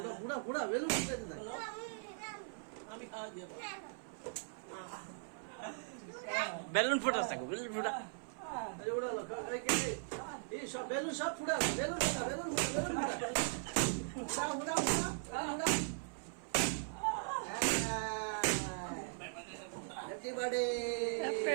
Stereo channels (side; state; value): left; silent; 51 dB below the other